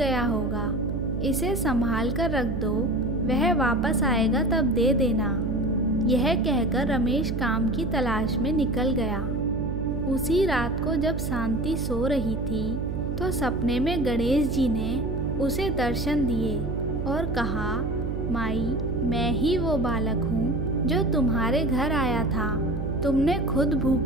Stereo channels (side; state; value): right; noise; hum, 3 dB below the sound